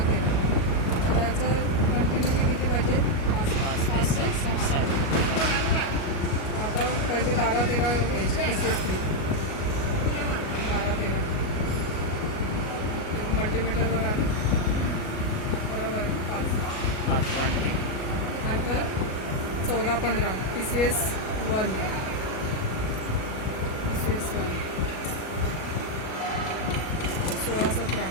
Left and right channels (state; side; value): late; right; 37 ms